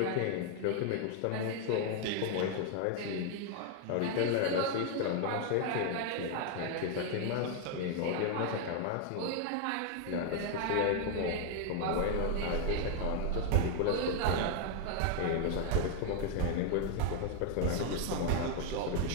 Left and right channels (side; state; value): both; different; correlation 0.00